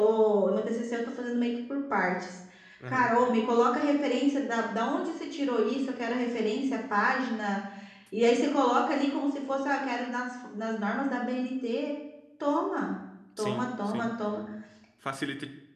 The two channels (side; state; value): both; identical; correlation 1.00